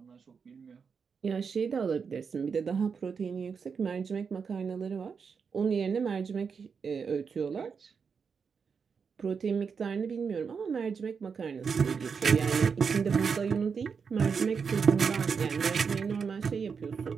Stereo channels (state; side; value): quieter; left; 5.9 dB